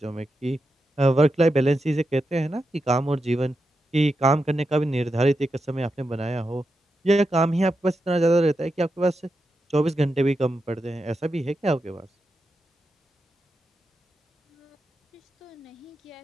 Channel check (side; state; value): both; normal; correlation 0.87